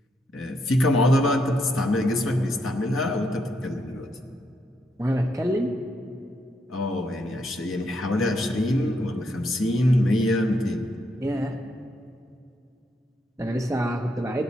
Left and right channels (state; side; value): normal; both; correlation 0.78